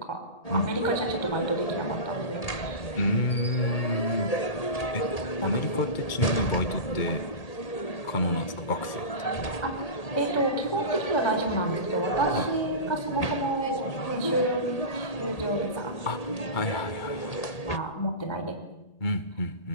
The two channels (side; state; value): right; late; 1.8 ms